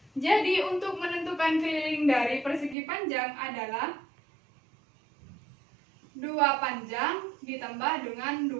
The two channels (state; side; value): drops out; left; at 2.8 s